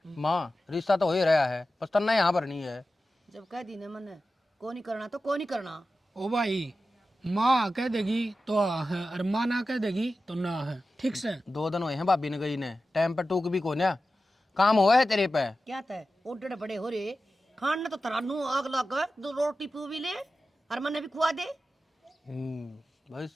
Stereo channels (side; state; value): both; normal; correlation 0.93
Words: माँ रिश्ता तो हो ही रहा है बस तन्ना यहाँ पर नहीं है। जब कह दी ने मन को नहीं करना तो को नहीं करना। ओ भाई माँ कह देगी तो हाँ है और माँ ना कह देगी तो ना है ठीक से। 2 दिन हुए हैं भाभी ने गई ने, टाइम पर टूक भी को ना काम हुआ है तेरे पे। क्या तय ओडे बड़े हो रे खान ने तो तरानू आग लग 2 रोटी पू भी ले और मने भी खुआ दे। भाई